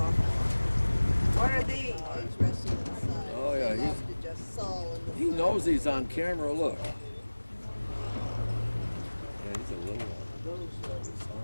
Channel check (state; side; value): inverted; both; correlation -1.00